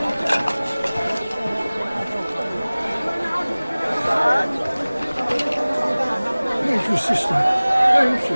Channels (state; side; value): inverted; both; correlation -0.99